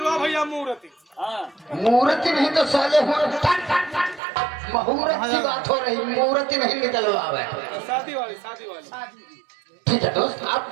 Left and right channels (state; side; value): drops out; left; at 4.2 s